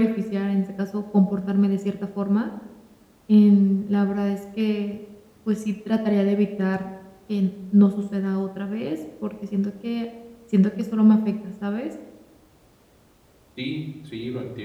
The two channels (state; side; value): identical; both; correlation 1.00